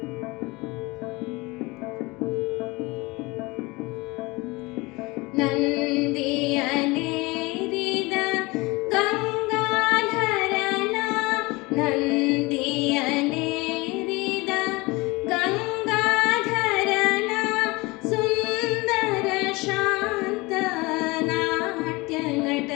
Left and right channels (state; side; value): quieter; right; 23.7 dB